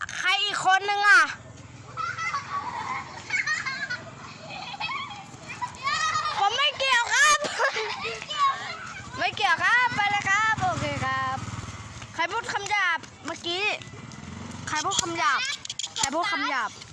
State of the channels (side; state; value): both; identical; correlation 1.00